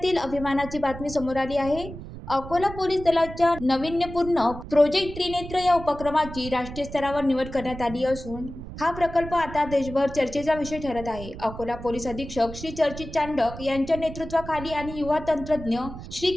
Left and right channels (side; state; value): right; noise; rumble, 12 dB below the sound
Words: अभिमानाची बातमी समोर आली आहे. अकोला पोलीस दलाच्या नाविन्यपूर्ण प्रोजेक्ट त्रिनेत्र या उपक्रमाची राष्ट्रीय स्तरावर निवड करण्यात आली असून हा प्रकल्प आता देशभर चर्चेचा विषय ठरत आहे. अकोला पोलीस अधीक्षक श्री चर्चित चांडक यांच्या नेतृत्वाखाली आणि युवा तंत्रज्ञ श्री